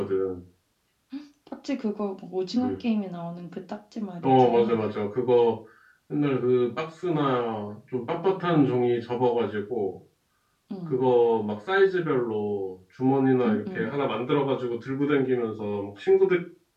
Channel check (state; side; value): identical; both; correlation 1.00